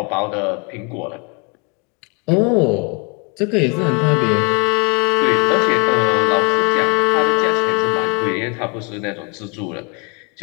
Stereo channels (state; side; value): quieter; right; 31.4 dB